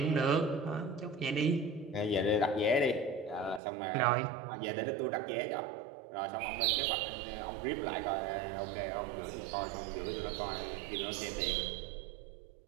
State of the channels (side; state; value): left; drops out; at 3.6 s